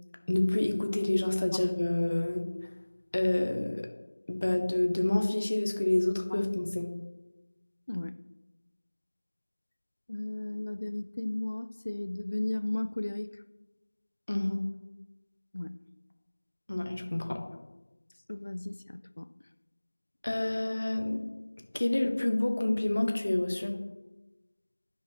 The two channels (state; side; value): inverted; both; correlation -1.00